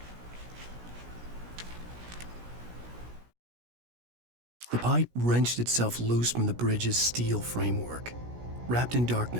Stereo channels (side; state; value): left; late; 17 ms